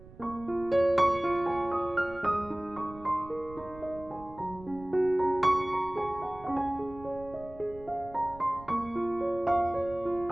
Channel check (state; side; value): noise; right; rumble, 19 dB below the sound